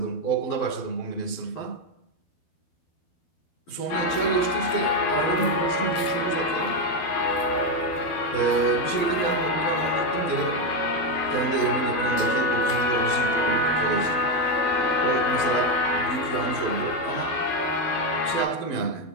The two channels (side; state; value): right; late; 12 ms